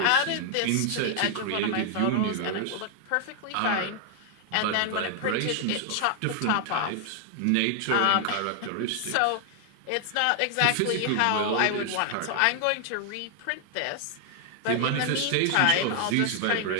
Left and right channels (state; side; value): different; both; correlation 0.00